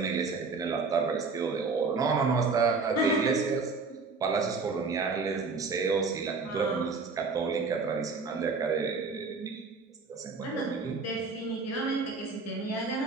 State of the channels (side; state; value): left; quieter; 4.3 dB